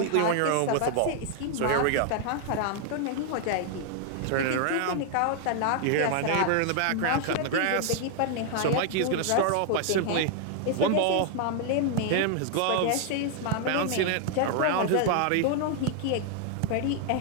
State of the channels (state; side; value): different; both; correlation 0.00